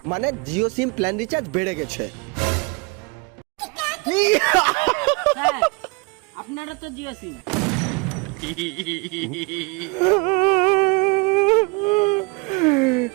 মানে জিও সিম প্ল্যান রিচার্জ বেড়ে গেছে। হ্যাঁ, আপনারা তো জিও সিম।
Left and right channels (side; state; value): left; quieter; 29.1 dB